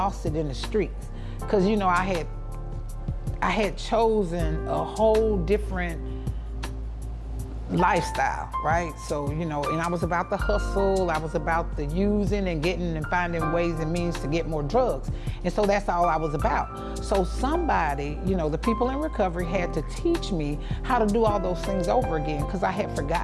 it in the streets. Because, I had chosen a whole different lifestyle, right? So, and I was about the hustle, I was about the using and getting and finding ways and means to get more drugs. And so that's all I was about. So somebody, the people in recovery had to teach me how to do all those things over again, because I had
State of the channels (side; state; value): both; identical; correlation 1.00